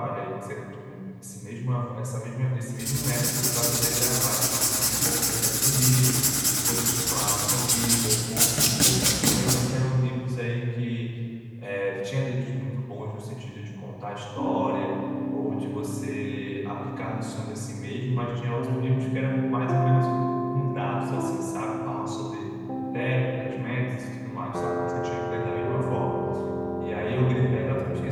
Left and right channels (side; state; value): both; identical; correlation 1.00